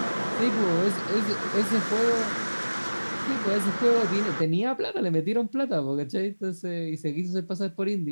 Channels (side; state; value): both; inverted; correlation -1.00